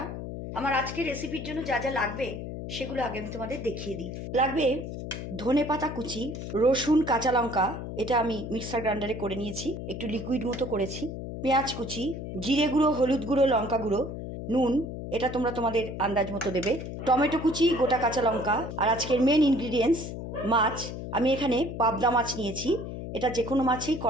আমার আজকের রেসিপির জন্য যা যা লাগবে সেগুলো আগে আমি তোমাদের দেখিয়ে দিই। লাগবে ধনেপাতা কুচি, রসুন, কাঁচা লঙ্কা, এটা আমি মিক্সার গ্রাইন্ডারে করে নিয়েছি, একটু লিকুইড মতো করেছি, পেঁয়াজ কুচি, জিরে গুঁড়ো, হলুদ গুঁড়ো, লঙ্কা গুঁড়ো, নুন, এটা তোমরা তোমাদের আন্দাজ মতো দেবে, টমেটো কুচি, গোটা কাঁচা লঙ্কা। আর আজকের মেন ইনগ্রিডিয়েন্টস মাছ। আমি এখানে পাবদা মাছ নিয়েছি, এটা যে কোনো মাছই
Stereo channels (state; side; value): noise; left; hum, 7 dB below the sound